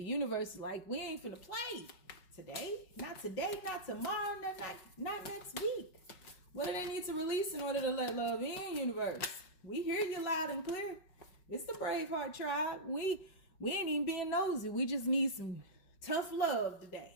universe is like, we ain't finna play today, not tomorrow, not next week. What do they need to release in order to let love in, universe? We hear you loud and clear. It's the Braveheart tribe. We ain't even being nosy. We just need some tough love today.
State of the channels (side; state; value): right; late; 5.3 ms